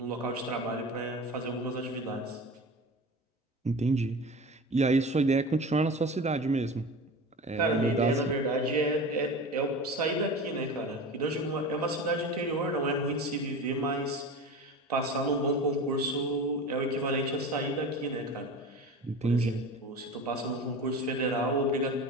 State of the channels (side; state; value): both; normal; correlation 0.32